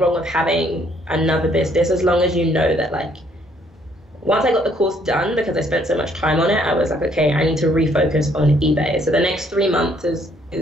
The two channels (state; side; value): normal; both; correlation 0.66